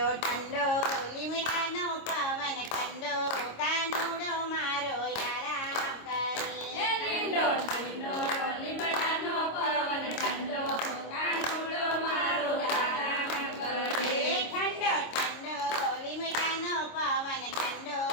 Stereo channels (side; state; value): right; late; 26 ms